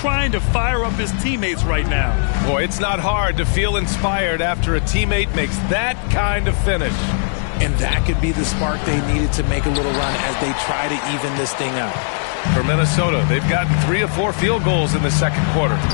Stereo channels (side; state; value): right; silent; digital silence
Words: to fire up his teammates right now. Boy, it's not hard to feel inspired after a teammate makes that kind of finish. And that could be the spark they needed to make a little run as they try to even this thing out. For Minnesota, they've gotten 3 of 4 field goals in the second quarter.